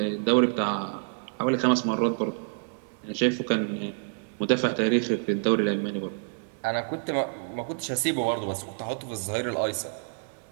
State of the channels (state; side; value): silent; left; digital silence